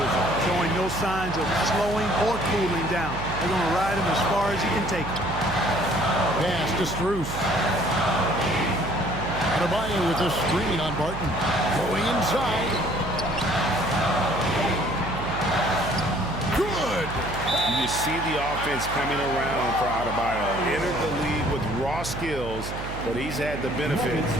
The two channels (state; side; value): noise; right; hum, 8 dB below the sound